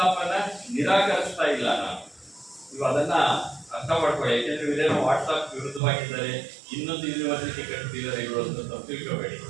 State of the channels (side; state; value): left; drops out; at 5.8 s